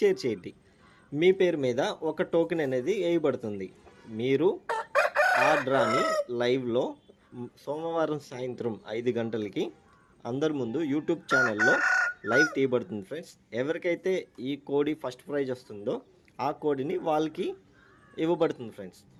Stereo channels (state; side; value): identical; both; correlation 1.00